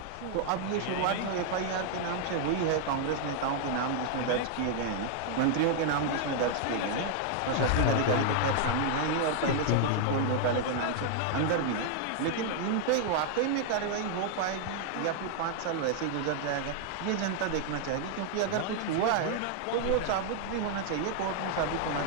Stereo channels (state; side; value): different; both; correlation 0.00